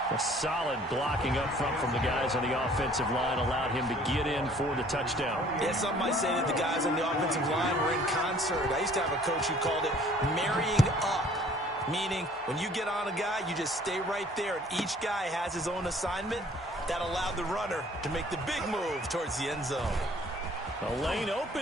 A solid blocking up front from the guys on the offensive line allowed him to get in for the touchdown. Yeah, some might say that the guys on the offensive line were in concert. I used to have a coach who called it marrying up, meaning when you get on a guy, you just stay right there, and each guy has his own assignment. That allowed the runner to make the big move towards the end zone. The lane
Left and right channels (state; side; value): normal; both; correlation 0.55